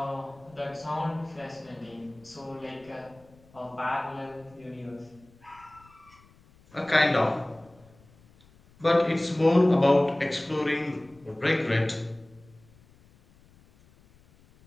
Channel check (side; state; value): left; noise; rumble, 28 dB below the sound